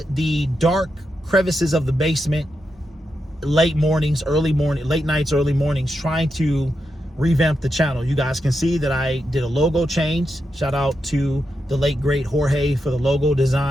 the dark crevices of the basement, late nights, early mornings, trying to revamp the channel. You guys can see that I did a logo change. Shout out to the late great Jorge for the logo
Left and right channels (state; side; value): normal; both; correlation 0.86